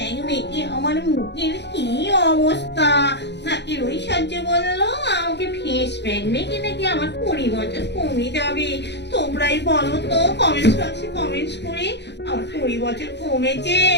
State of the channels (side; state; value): right; late; 0.50 ms